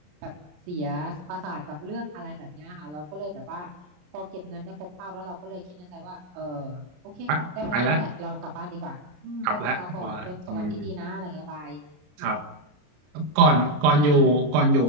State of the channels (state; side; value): late; left; 33 ms